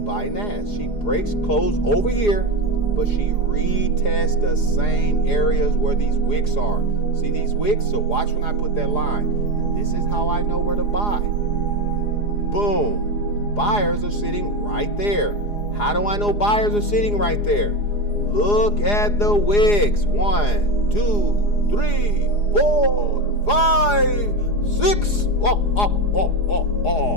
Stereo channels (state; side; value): late; right; 4.9 ms